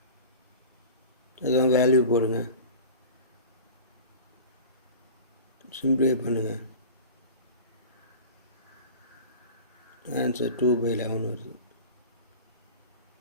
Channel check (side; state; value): both; inverted; correlation -0.37